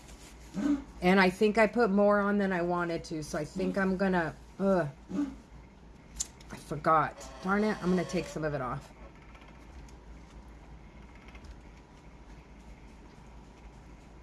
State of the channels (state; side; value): identical; both; correlation 1.00